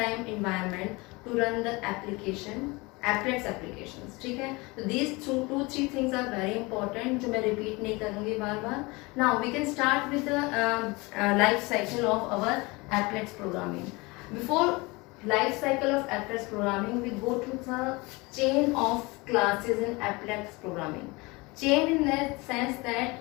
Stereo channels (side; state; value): right; quieter; 24.8 dB